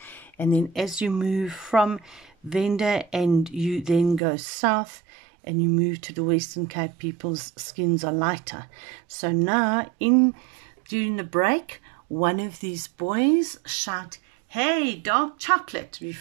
And then as you move from Venda and you then go south and you move to the Western Cape, people's skins are lighter. So now, during the break, one of these boys shout, "Hey, dark chocolate,"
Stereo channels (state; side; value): drops out; left; at 4.2 s